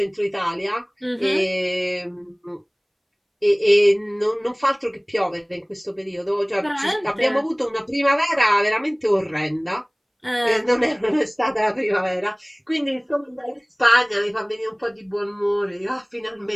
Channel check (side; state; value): both; identical; correlation 1.00